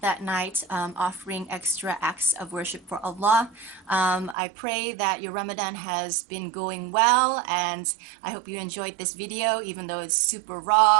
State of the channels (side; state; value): left; drops out; at 4.4 s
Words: that night, offering extra acts of worship for Allah. I pray that your Ramadan has been going well, and I hope you enjoyed this video, even though it's super